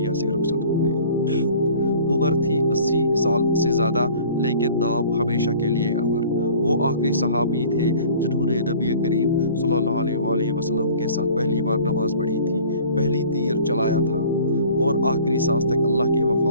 से रुखसत हो गए। उम्र थी 80 साल से ज़्यादा, लेकिन नाम हमेशा के लिए अमर। वो आखिरी सहाबी थे जिन्होंने नबी करीम सल्लल्लाहु अलैहि वसल्लम के साथ पहली बार नमाज पढ़ी थी, पहली तीर चलाया था और आखिरी सांस तक अल्लाह के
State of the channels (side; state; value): both; inverted; correlation -0.48